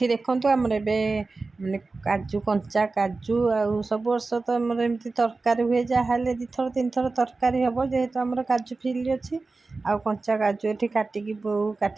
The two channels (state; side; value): quieter; left; 3.7 dB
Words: देखंतु हमर एबे माने काजू कंचा काजू आउ सब वर्ष तो हमर एमती तरकारी हुए जहाँले 2 थर 3 थर तरकारी हम जेहेतु हमर काजू फिल्ड अच्छी आउ कंचा काजू एठी काटिकी बो